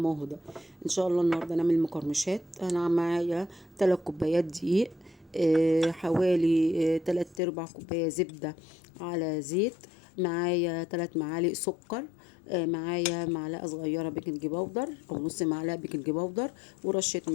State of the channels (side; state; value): right; drops out; at 7.4 s